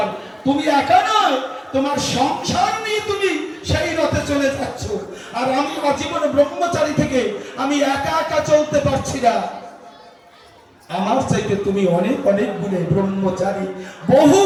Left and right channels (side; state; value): both; identical; correlation 1.00